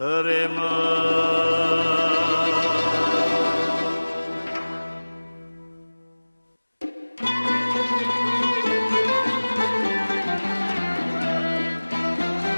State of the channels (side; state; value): both; inverted; correlation -1.00